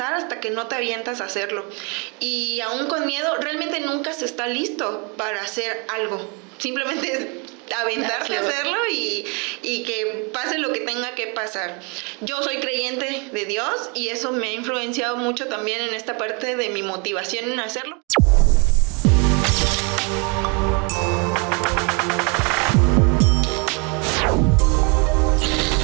hasta que no te avientas a hacerlo. Y aún con miedo, realmente nunca se está listo para hacer algo. Simplemente es aventarte a hacerlo y que pase lo que tenga que pasar. Yo soy creyente de Dios y eso me ha influenciado mucho también en esta parte de mi motivación en hacerlo.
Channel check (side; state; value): left; quieter; 32.9 dB